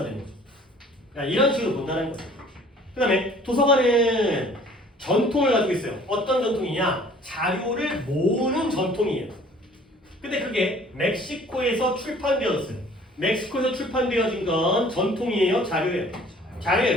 되는 거죠. 그러니까 이런 식으로 본다는 거죠. 그 다음에 도서관은 전통을 가지고 있어요. 어떤 전통이냐? 자료를 모으는 전통이에요. 근데 그게 멕시코에서 출판되었어요. 멕시코에서 출판되어진 건 전통이에요? 자료예요? 자료예요.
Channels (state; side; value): normal; both; correlation 0.52